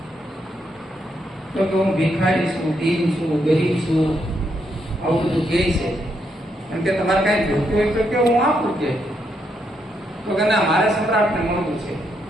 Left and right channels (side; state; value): both; normal; correlation 0.78